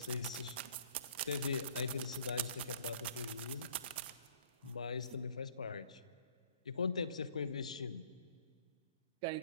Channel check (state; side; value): inverted; both; correlation -0.56